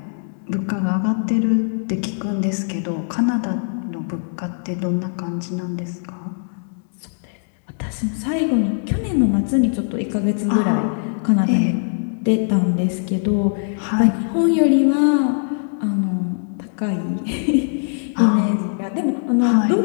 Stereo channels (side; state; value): right; silent; digital silence